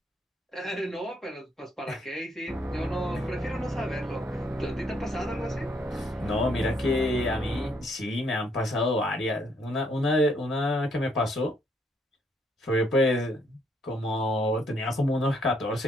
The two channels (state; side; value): normal; both; correlation 0.70